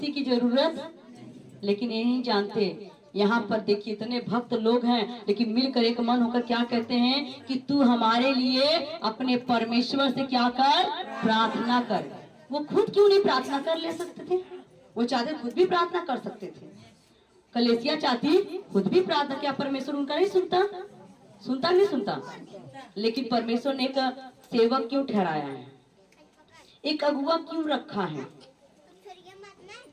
की जरूरत। लेकिन ये नहीं जानते, यहाँ पर देखिए इतने भक्त लोग हैं, लेकिन मिलकर एक मन होकर क्या कहते हैं कि तू हमारे लिए अपने परमेश्वर से क्या कर? प्रार्थना कर। वो खुद क्यों नहीं प्रार्थना कर ले सकते थे? वो चाहते खुद भी प्रार्थना कर सकते थे। कलीसिया चाहती खुद भी प्रार्थना, क्या परमेश्वर उनका नहीं सुनता? लेकिन परमेश्वर ने एक सेवक क्यों ठहराया है, एक अगुआ क्यों रखा है?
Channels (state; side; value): identical; both; correlation 1.00